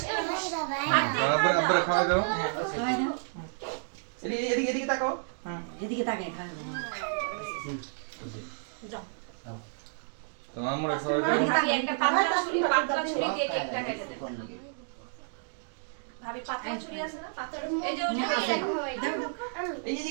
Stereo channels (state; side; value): silent; left; digital silence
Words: আব্বা খাওয়া দাও। খাওয়াই দাও। এদিকে এদিকে এদিকে তাকাও। হুম। এদিকে তাকাই খাওয়াই দাও। তো আমরা খাওয়া দাও। ভাবি একটা পাতলা ছুরি দিয়ে কেকটা কেটে দেন। ভাবি পাতলা ছুরি আছে না? পাতলা এই যে ওটা এই যে